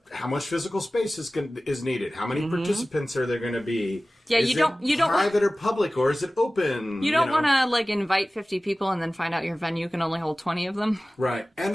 Yep. How much physical space is needed? How many participants are there going to be? Yeah, is you don't private or public, or is it open? You don't want to, like, invite 50 people and then find out your venue can only hold 20 of them. Right.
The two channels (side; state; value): both; normal; correlation 0.97